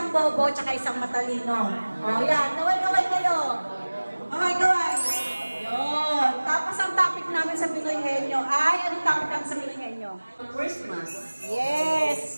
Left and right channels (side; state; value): both; inverted; correlation -1.00